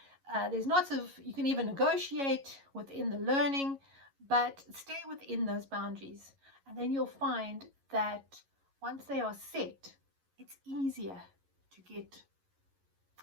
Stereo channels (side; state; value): left; late; 11 ms